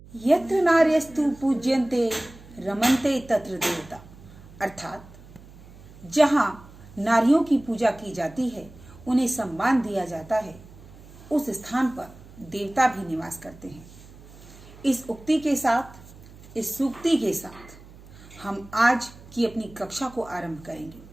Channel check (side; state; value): right; noise; hum, 20 dB below the sound